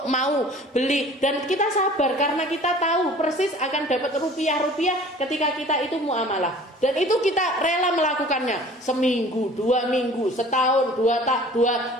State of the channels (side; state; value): both; normal; correlation 0.47